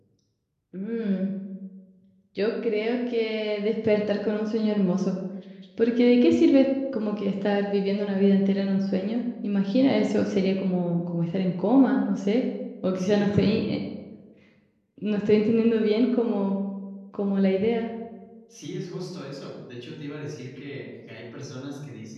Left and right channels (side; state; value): both; identical; correlation 1.00